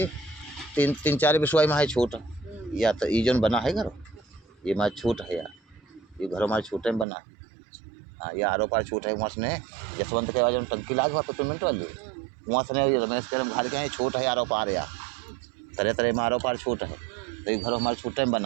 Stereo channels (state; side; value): drops out; left; at 7.1 s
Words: 3-4 विश्वाई में है छूट, या तो ई जोन बना है घर ये हमारा छूट है यार, ये घर हमारे छूटे में बना है। हाँ ये आरो पार छूट है, वहाँ से जसवंत के बाद टंकी लाग हुआ पेमेंट वाली, वहाँ से रमेश के घर के छूट है आरो पार, या तरह तरह में आरो पार छूट है, तो ये घर हमारे छूटे में